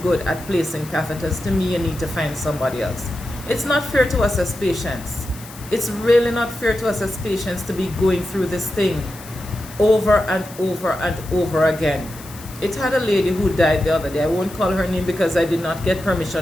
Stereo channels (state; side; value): noise; left; hiss, 17 dB below the sound